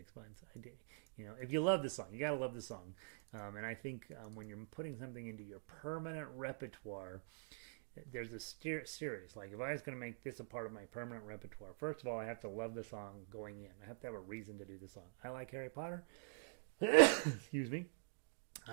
months. If you love the song, you gotta love the song. And I think when you're putting something into your permanent repertoire, there's a series. Like if I was going to make this a part of my permanent repertoire, first of all, I have to love the song going in. I have to have a reason to do the song. I like Harry Potter. Excuse me.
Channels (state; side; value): silent; left; digital silence